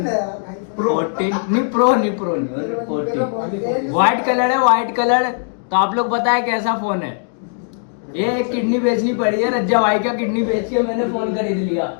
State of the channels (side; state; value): right; silent; 67 dB below the other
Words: नहीं प्रो नहीं 14। व्हाइट कलर है, व्हाइट कलर। तो आप लोग बताएं कैसा फोन है। ये एक किडनी बेचनी पड़ी है, रज्जा भाई का किडनी बेच के मैंने फोन खरीद लिया।